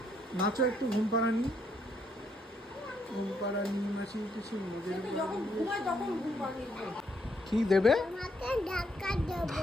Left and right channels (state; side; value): normal; both; correlation 0.73